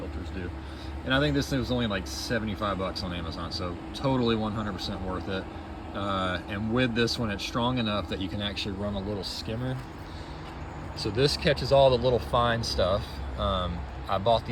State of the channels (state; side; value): identical; both; correlation 1.00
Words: do. And I think this thing was only like 75 bucks on Amazon, so totally 100% worth it. And with this one, it's strong enough that you can actually run a little skimmer. So this catches all the little fine stuff. I bought